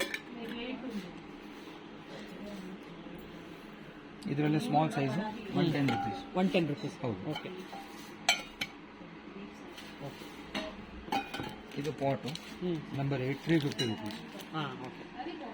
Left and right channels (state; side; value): identical; both; correlation 1.00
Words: ಇದರಲ್ಲಿ ಸ್ಮಾಲ್ ಸೈಜ್ 110 ರುಪೀಸ್. 110 ರುಪೀಸ್. ಹೌದು. ಓಕೆ, ಇದು ಪಾಟು ನಂಬರ್ 8, 350 ರುಪೀಸ್. ಓಕೆ.